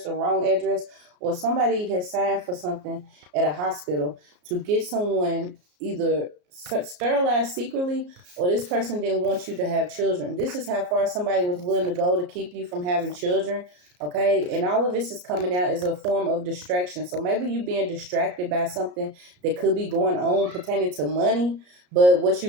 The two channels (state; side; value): late; left; 34 ms